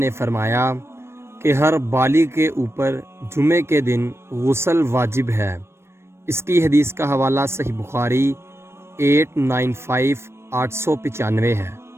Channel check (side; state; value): left; late; 0.12 ms